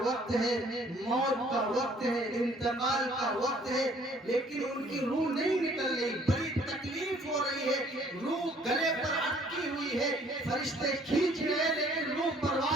وقت ہے، موت کا وقت ہے، انتقال کا وقت ہے، لیکن ان کی روح نہیں نکل رہی، بڑی تکلیف ہو رہی ہے، روح گلے پر اٹکی ہوئی ہے، فرشتے کھینچ رہے لیکن روح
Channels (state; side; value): normal; both; correlation 0.59